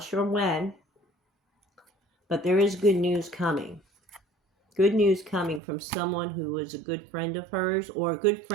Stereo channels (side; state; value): left; drops out; at 5.6 s